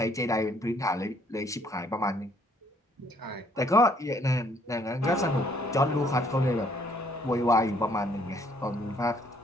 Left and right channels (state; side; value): normal; both; correlation 0.64